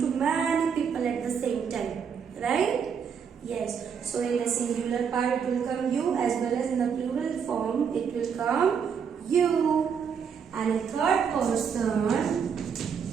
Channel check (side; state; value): left; quieter; 6.9 dB